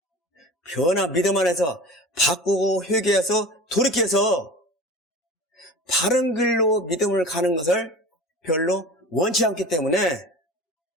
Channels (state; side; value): normal; both; correlation 0.36